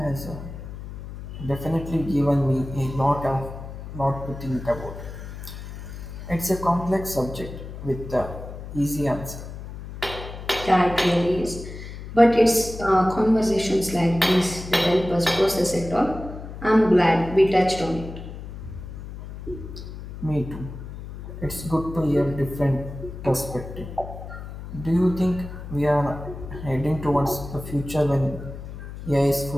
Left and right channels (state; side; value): noise; left; hum, 11 dB below the sound